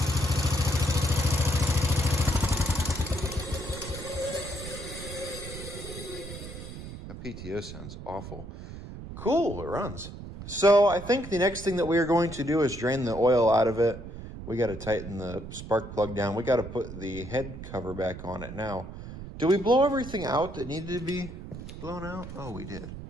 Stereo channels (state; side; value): noise; right; rumble, 11 dB below the sound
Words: That PTO sounds awful. Cool, it runs. So I think the next thing that we are going to do is drain the oil out of it. We got to tighten the spark plug down. We got to put the head cover back on it now. Did we blow everything out that needed to be blown out? Oh, we did.